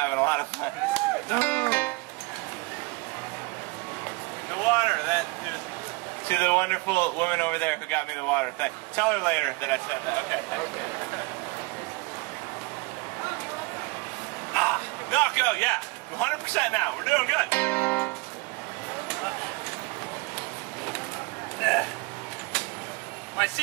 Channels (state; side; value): quieter; left; 24.9 dB